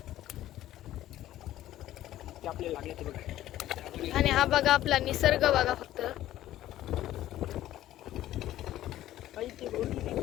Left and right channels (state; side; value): quieter; right; 13.7 dB